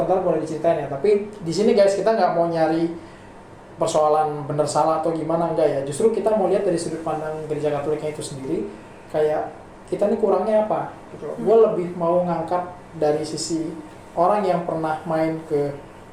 ntar boleh diceritain ya. Tapi di sini guys kita nggak mau nyari persoalan benar salah atau gimana, enggak ya. Justru kita mau lihat dari sudut pandang gereja Katoliknya itu sendiri, kayak kita nih kurangnya apa gitu. Gue lebih mau ngangkat dari sisi orang yang pernah main ke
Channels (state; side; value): identical; both; correlation 1.00